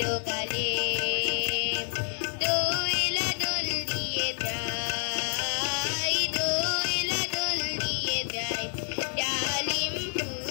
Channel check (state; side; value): silent; right; digital silence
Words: গালে দোয়েলা দোল দিয়ে যায়, দোয়েলা দোল দিয়ে যায় ডালিম